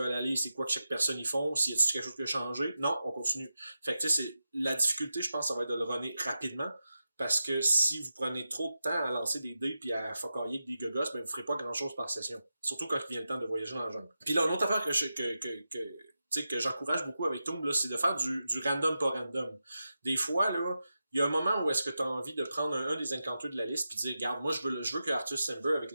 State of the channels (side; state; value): both; inverted; correlation -0.90